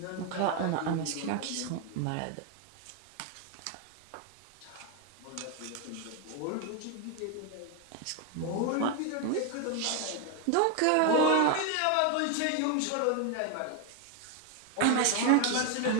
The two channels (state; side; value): different; both; correlation 0.01